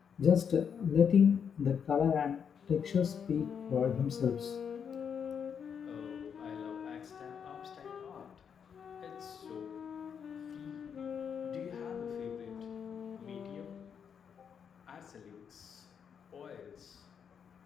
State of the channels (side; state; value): right; quieter; 7.3 dB